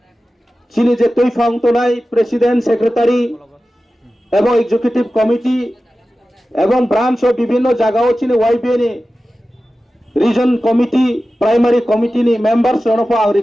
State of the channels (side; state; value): both; normal; correlation 0.94